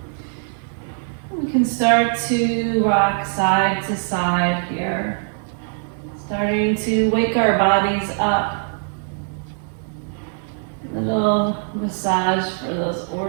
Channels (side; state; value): left; silent; 65 dB below the other